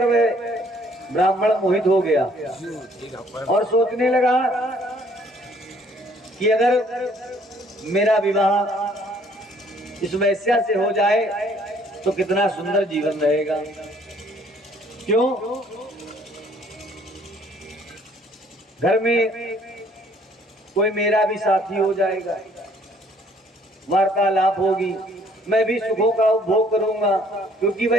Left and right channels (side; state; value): both; normal; correlation 0.61